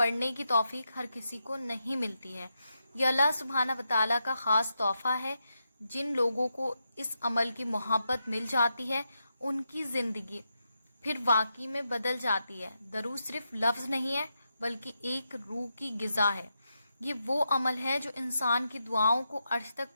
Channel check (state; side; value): inverted; both; correlation -0.85